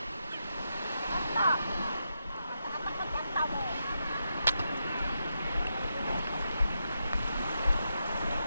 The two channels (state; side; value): inverted; both; correlation -0.84